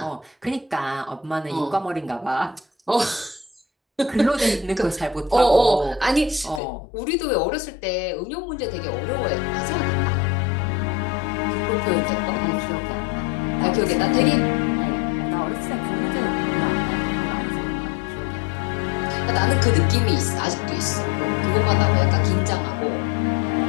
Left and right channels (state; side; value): drops out; right; at 6.6 s